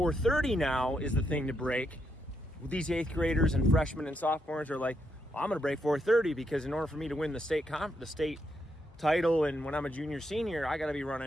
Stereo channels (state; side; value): normal; both; correlation 0.80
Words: now is the thing to break, these 8th graders and freshmen and sophomores are like, well, I'm going to break 4:30 because in order for me to win the state title, and when I'm a junior, senior, I got to be